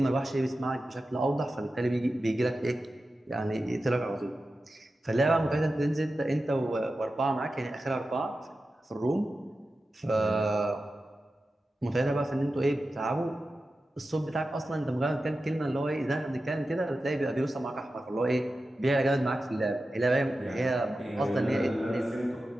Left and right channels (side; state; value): both; normal; correlation 0.93